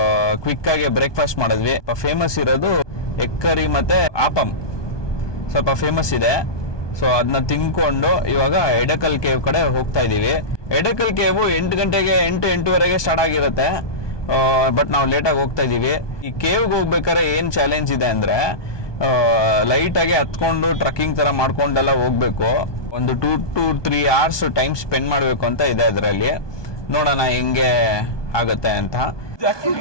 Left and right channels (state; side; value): late; right; 1.2 ms